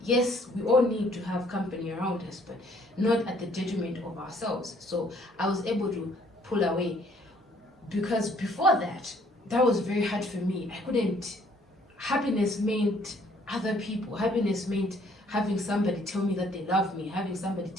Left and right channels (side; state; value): both; normal; correlation 0.62